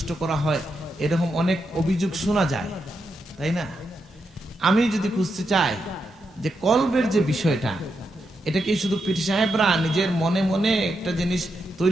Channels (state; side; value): normal; both; correlation 0.84